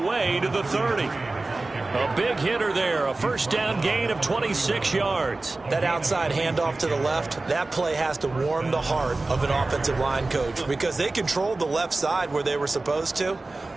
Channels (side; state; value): left; quieter; 3.2 dB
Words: to the 30. A big hitter there. A first down gain of 26 yards. That outside handoff to the left, that play has to warm the heart of an offensive line coach because they controlled the left side where they were supposed to,